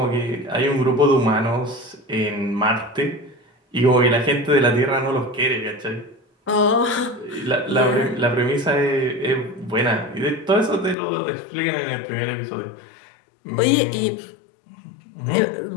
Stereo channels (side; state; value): right; drops out; at 11.0 s